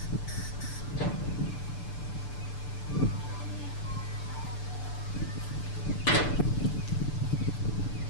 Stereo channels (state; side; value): late; right; 6.8 ms